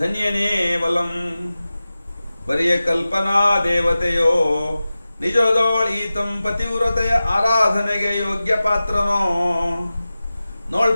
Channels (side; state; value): both; inverted; correlation -0.95